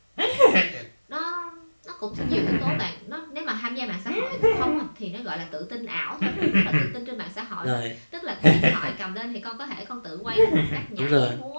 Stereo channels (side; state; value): both; inverted; correlation -1.00